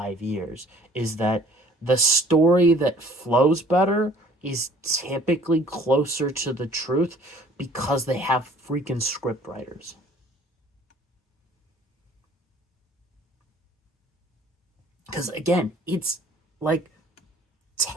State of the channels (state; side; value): normal; both; correlation 0.54